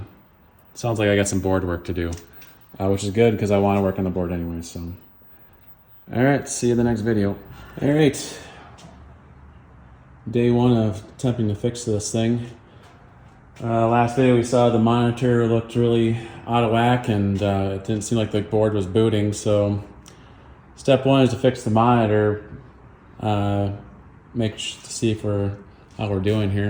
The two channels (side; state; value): both; identical; correlation 1.00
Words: like I got some board work to do, which is good because I want to work on the board anyway. So, all right, see you in the next video. All right, day 1 of attempting to fix this thing. Last video we saw the monitor looked really out of whack, and it didn't seem like the board was booting. So step 1 is to fix the monitor, to see how we're doing